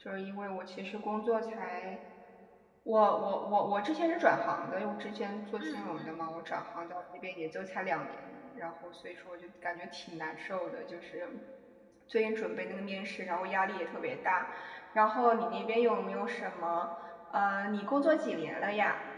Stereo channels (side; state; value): both; identical; correlation 1.00